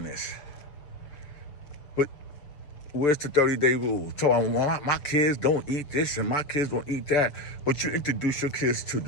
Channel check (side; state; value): right; late; 6.9 ms